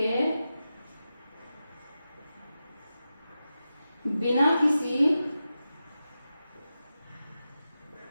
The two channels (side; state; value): both; inverted; correlation -0.92